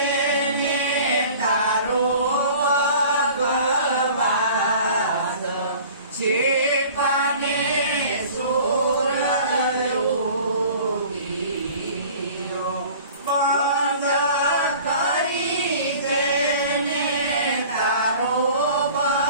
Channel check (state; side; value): inverted; both; correlation -0.46